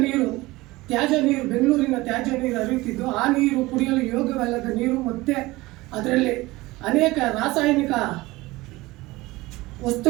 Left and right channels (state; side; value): quieter; left; 20.2 dB